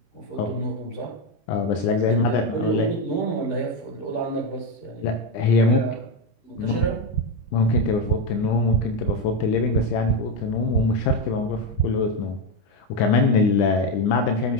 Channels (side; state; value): right; late; 20 ms